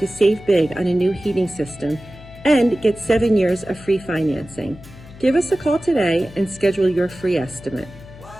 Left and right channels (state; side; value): noise; left; hum, 19 dB below the sound